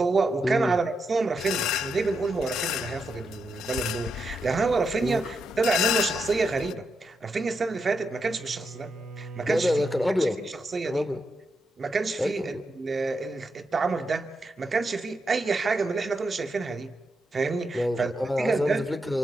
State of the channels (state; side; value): normal; both; correlation 0.84